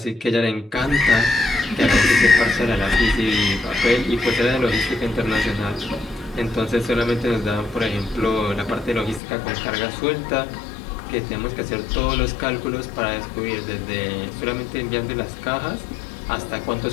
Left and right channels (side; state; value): right; drops out; at 9.2 s